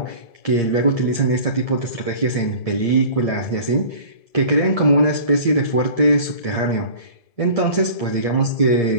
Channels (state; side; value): late; right; 1.7 ms